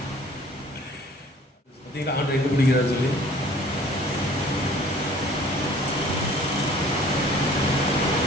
பார்த்தீங்களா ஆண்டு எங்கே பிடிக்கிறாரு சொல்லி.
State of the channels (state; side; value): normal; both; correlation 0.52